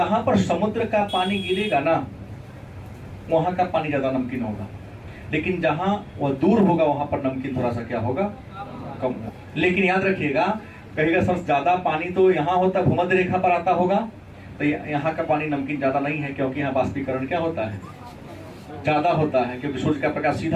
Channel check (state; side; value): identical; both; correlation 1.00